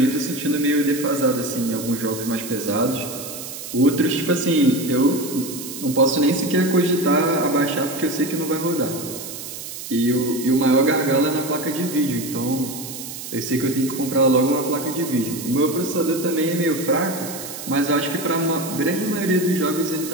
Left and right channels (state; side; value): noise; right; hiss, 10 dB below the sound